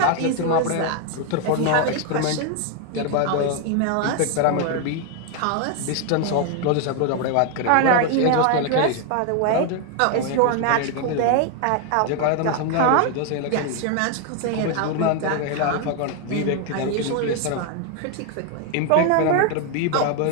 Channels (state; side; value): different; both; correlation 0.01